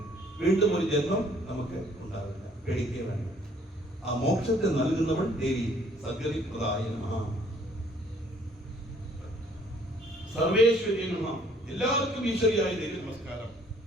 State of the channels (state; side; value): normal; both; correlation 0.60